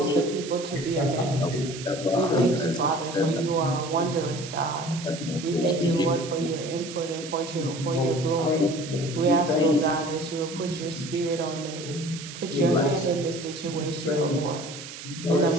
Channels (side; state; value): right; noise; hiss, 12 dB below the sound